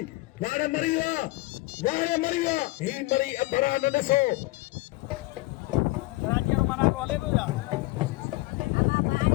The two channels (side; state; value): right; quieter; 21.3 dB